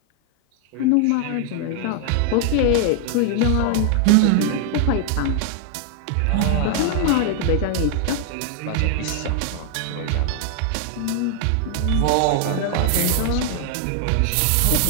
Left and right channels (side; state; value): both; different; correlation 0.00